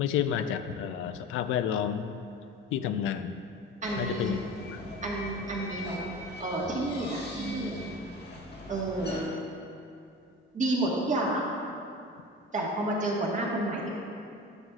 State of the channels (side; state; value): both; normal; correlation 0.32